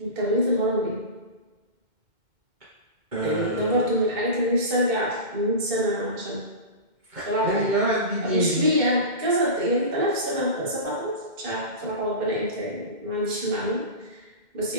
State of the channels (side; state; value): left; late; 2.1 ms